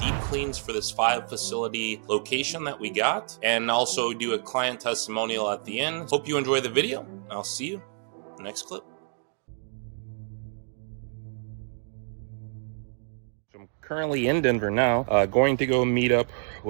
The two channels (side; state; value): left; silent; 59 dB below the other